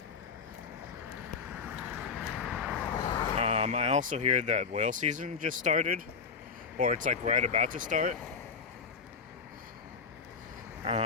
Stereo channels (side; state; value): right; quieter; 5.4 dB